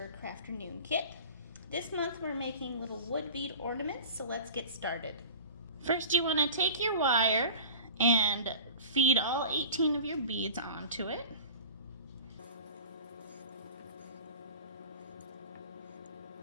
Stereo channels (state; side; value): inverted; both; correlation -0.38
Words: Crafternoon kit. This month we're making little wood bead ornaments, so let's get started. First you want to take your wire and feed all 18 of your beads onto it.